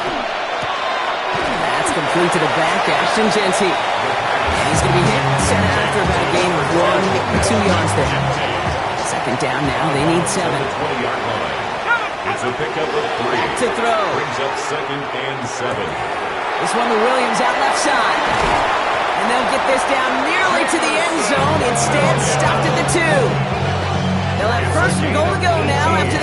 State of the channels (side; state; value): both; identical; correlation 1.00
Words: That's complete to the back, Ashton Jeanty. And he's going to be hit, set out after about a gain of 1 or 2 yards there. 2nd down now, they need 7. 20-yard line. It's a pickup of 3. To throw. Brings up 2nd and 7. This one to Williams out left side. And they'll get this down nearly to the end zone. Instead, stopped at the 2. They'll have 1st and goal to go now after